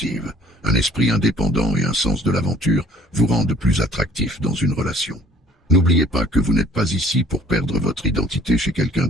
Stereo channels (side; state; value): both; normal; correlation 0.54